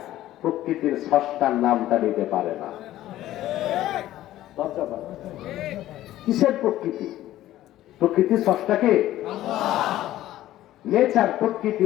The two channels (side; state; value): right; quieter; 14.2 dB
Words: প্রকৃতির স্রষ্টার নামটা নিতে পারে না। কিসের প্রকৃতি? প্রকৃতির স্রষ্টাকে নেচার, প্রকৃতি,